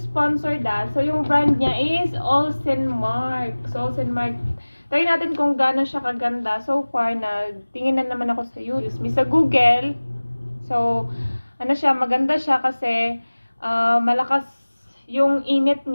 So, yung brand niya is Olsenmark. So, Olsenmark. Try natin kung gaano siya kaganda. So far, nagtingin na naman ako sa YouTube, sa Google. So, ano siya, maganda siya kasi malakas yung init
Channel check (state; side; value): inverted; both; correlation -1.00